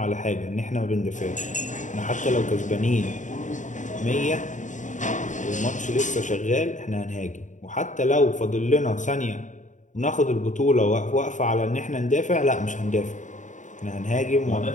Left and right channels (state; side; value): late; right; 0.36 ms